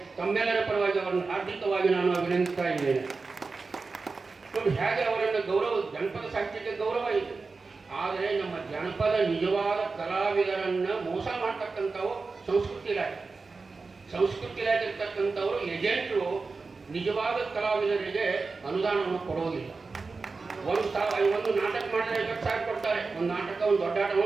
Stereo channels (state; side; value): quieter; left; 4.2 dB